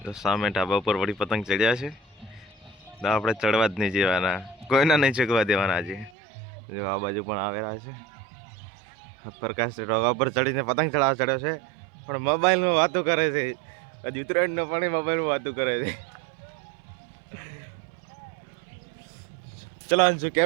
જો સામે ઢાબા ઉપર વળી પતંગ ચડ્યા છે તો આપણે ચડવા જ નહીં જવાના કોઈના નહીં ચગવા દેવાના આજે જો આ બાજુ પણ આવેલા છે પ્રકાશ ઢોગા પર ચડીને પતંગ ચડાવવા ચડ્યો છે પણ મોબાઈલમાં વાતો કરે છે હજી ઉત્તરાયણનો પણ મોબાઈલમાં વાતો કરે છે ચલો અંશુ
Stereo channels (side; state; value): left; drops out; at 6.1 s